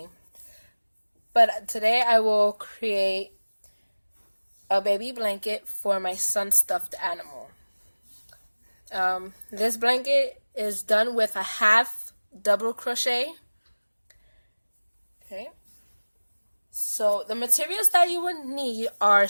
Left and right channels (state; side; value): inverted; both; correlation -1.00